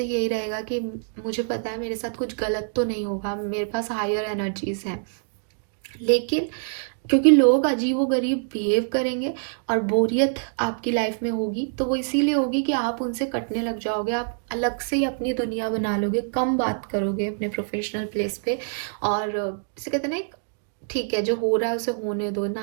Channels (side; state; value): left; silent; digital silence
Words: यही रहेगा कि मुझे पता है मेरे साथ कुछ गलत तो नहीं होगा, मेरे पास हायर एनर्जीज हैं। लेकिन क्योंकि लोग अजीब व गरीब बिहेव करेंगे और बोरियत आपकी लाइफ में होगी, तो वो इसीलिए होगी कि आप उनसे कटने लग जाओगे, आप अलग से ही अपनी दुनिया बना लोगे, कम बात करोगे अपने प्रोफेशनल प्लेस पे। और इसे कहते हैं ना, ठीक है जो हो रहा है उसे होने दो,